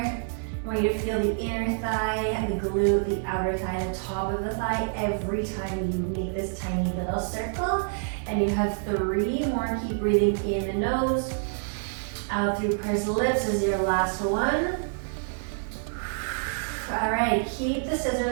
I want you to feel the inner thigh, the glute, the outer thigh, the top of the thigh every time you make this tiny little circle. And you have 3 more. Keep breathing in the nose. Out through pursed lips is your last one. All right, keep the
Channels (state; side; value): silent; left; 59 dB below the other